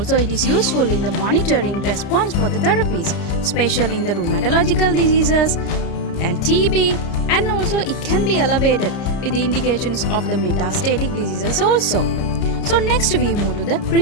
it is useful in the monitoring response for the therapies, especially in the rheumatological diseases and TB, and also it can be elevated with the indications of the metastatic diseases also. So next we move to the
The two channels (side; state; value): right; late; 29 ms